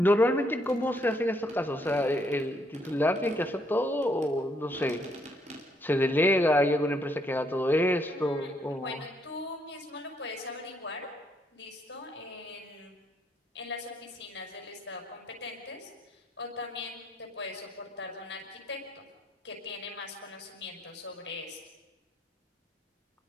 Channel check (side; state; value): both; normal; correlation 0.72